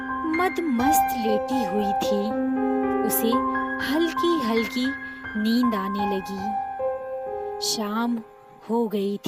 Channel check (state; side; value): identical; both; correlation 1.00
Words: मदमस्त लेटी हुई थी। उसे हल्की हल्की नींद आने लगी। शाम हो गई